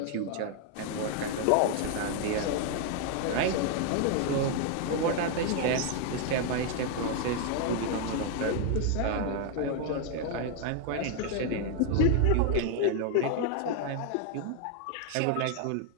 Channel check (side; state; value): both; different; correlation 0.00